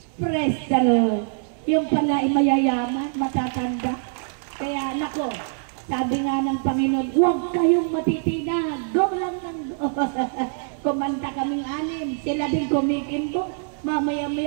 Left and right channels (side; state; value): left; silent; digital silence